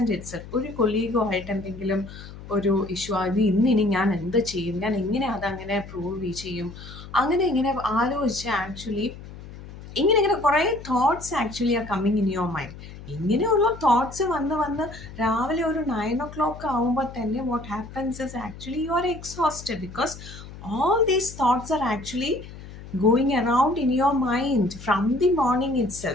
itself, ഒരു കൊളീഗോ ആയിട്ട് എന്തെങ്കിലും ഒരു ഇഷ്യൂ, അത് ഇന്നിനി ഞാൻ എന്ത് ചെയ്യും, ഞാൻ എങ്ങനെ അതങ്ങനെ പ്രൂവ് ചെയ്യും, അങ്ങനെ ഇങ്ങനെ ആലോചിച്ച് ആക്ച്വലി ഇങ്ങനെ കുറേ thoughts actually are coming in യുവർ മൈൻഡ്. ഇങ്ങനെയുള്ള തോട്ട്സ് വന്ന് വന്ന് രാവിലെ ഒരു 9 o'clock ആവുമ്പോൾ തന്നെ what happens is actually you R exhausted, because all these thoughts are actually going around in your mind from the morning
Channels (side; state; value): left; noise; hum, 15 dB below the sound